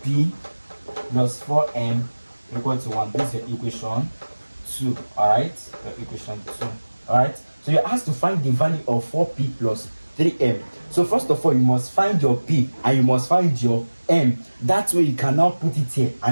plus 4m equal to 1. This is your equation 2. Alright, your equation 2. Alright, so you're asked to find the value of 4p plus 3m. So first of all, you must find your p and you must find your m. That way you can now put it here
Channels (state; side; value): inverted; both; correlation -1.00